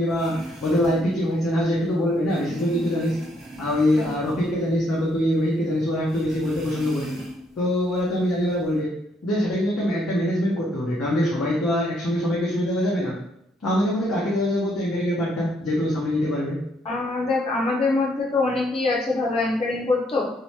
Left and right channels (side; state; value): both; normal; correlation 0.71